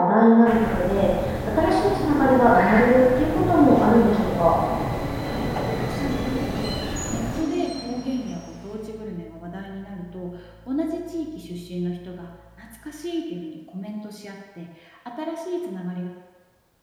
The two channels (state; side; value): identical; both; correlation 1.00